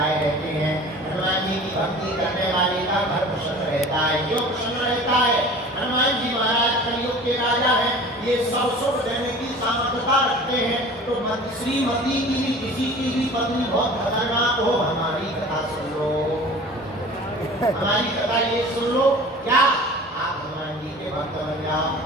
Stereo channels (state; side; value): normal; both; correlation 0.42